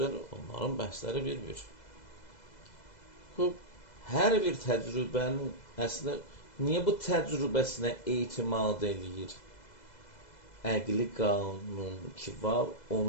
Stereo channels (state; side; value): late; right; 2.0 ms